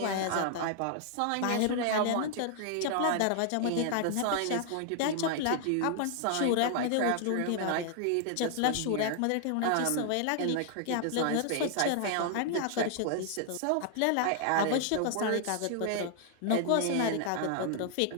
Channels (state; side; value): different; both; correlation 0.00